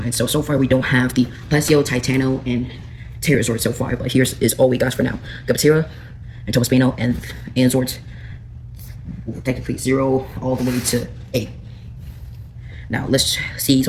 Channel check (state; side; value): identical; both; correlation 1.00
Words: So far we don't have the Plesio, Titano, and Terrazord so far, but here's is all we got for now. Gapatera and Tobaspino and Zords. Technically 0 all the way to 8. Now let's see